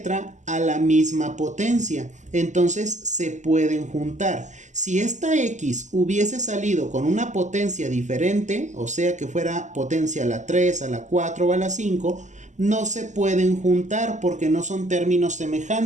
a la misma potencia. Entonces se pueden juntar. Si esta x hubiese salido con una potencia diferente, o sea que fuera potencia a la 3, a la 4 o a la 5, no se pueden juntar porque no son términos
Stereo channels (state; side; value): late; left; 0.34 ms